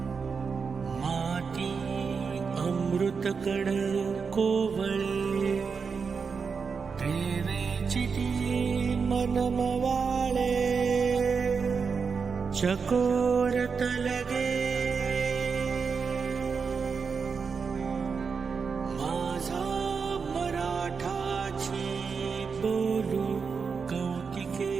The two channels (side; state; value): left; quieter; 5.5 dB